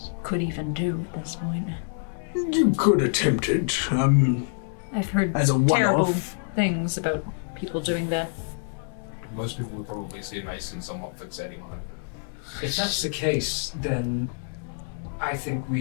could even do at this point. You could attempt it, I've heard as a terrible one-off. things about people doing that. Most people would probably see Mason somewhat fixating on it. If that's the case, then I think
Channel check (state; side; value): silent; right; digital silence